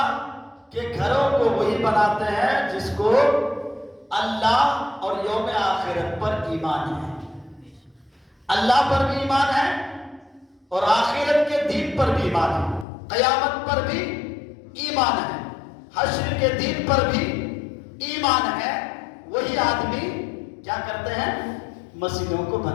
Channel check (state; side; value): drops out; right; at 12.9 s